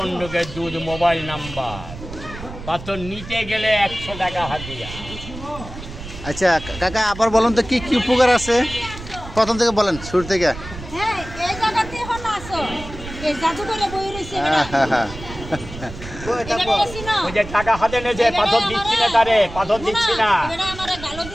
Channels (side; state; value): right; noise; rumble, 12 dB below the sound